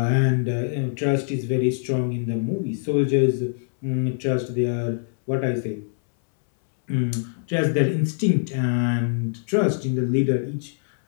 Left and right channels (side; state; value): right; silent; 63 dB below the other